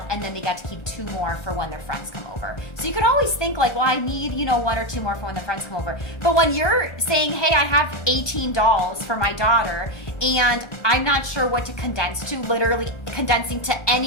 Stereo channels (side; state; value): right; late; 1.2 ms